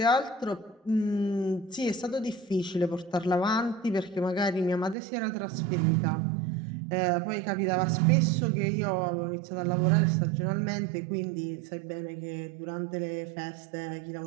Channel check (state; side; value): drops out; left; at 5.0 s